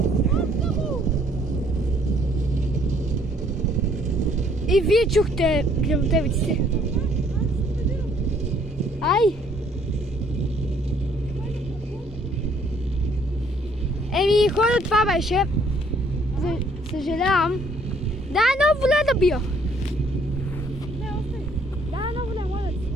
И вие чухте гръмотевиците. Ай! Еми, хора, това беше. Съжалявам. Дай едно воле да бия. Не, остай. Дай едно воле, моля да си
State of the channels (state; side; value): normal; both; correlation 0.63